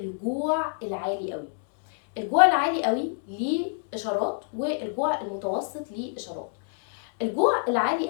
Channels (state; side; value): silent; right; digital silence